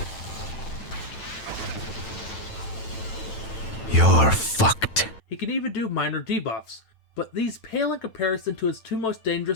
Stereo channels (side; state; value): right; late; 9.0 ms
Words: You're fucked. He can even do minor debuffs, but these pale in comparison to his 2 most